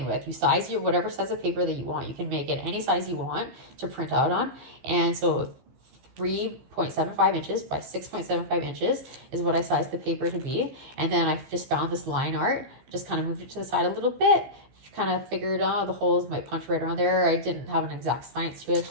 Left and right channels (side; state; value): left; late; 15 ms